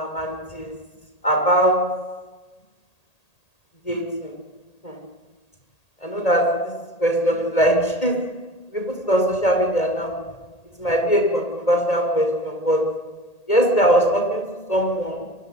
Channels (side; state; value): right; late; 1.8 ms